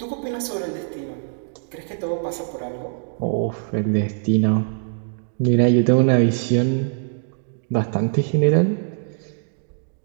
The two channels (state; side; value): silent; left; digital silence